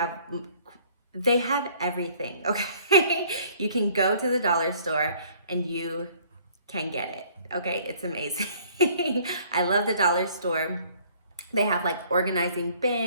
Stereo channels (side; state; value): both; inverted; correlation -0.57